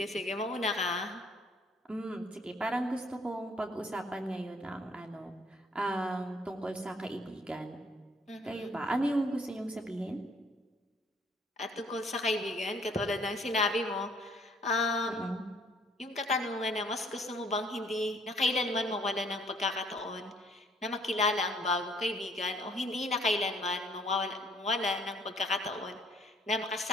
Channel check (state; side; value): normal; both; correlation 0.61